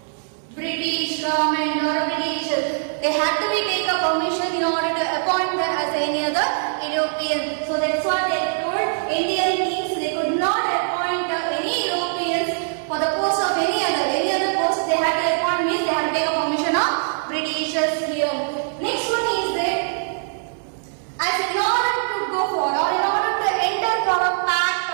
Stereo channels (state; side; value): silent; left; digital silence